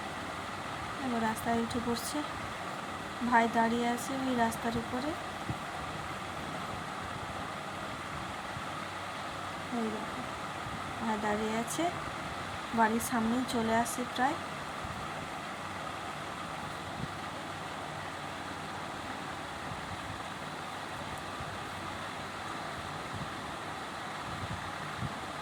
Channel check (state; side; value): identical; both; correlation 1.00